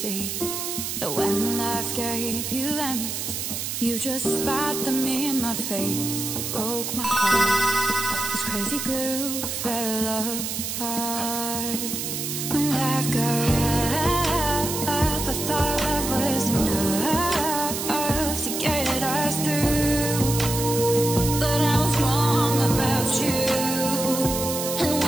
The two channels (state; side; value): noise; right; hiss, 4 dB below the sound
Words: that when life gave you lemons, you just spat them in my face. You broke my heart. This crazy glue fell apart. When life got rough, I thought love was enough to get us through. But I was wrong about you. And